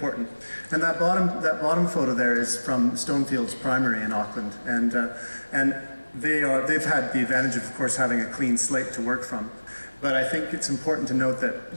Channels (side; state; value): both; inverted; correlation -1.00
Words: And that bottom photo there is from Stonefields Primary in Auckland, and they've had the advantage of course having a clean slate to work from. But I think it's important to note that